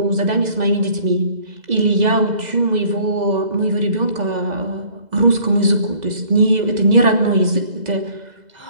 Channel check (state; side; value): late; left; 2.0 ms